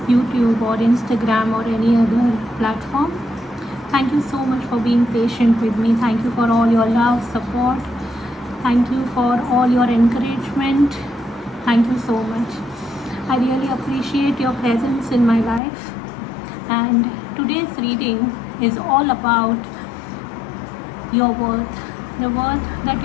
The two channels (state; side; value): drops out; right; at 15.6 s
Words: YouTube or Instagram or any other platform, thank you so much for being patient with me. Thank you for all your love, support. Thank you for all your encouragement. Thank you so much. I really appreciate your presence in my life. And today's reading is all about your worth, the worth that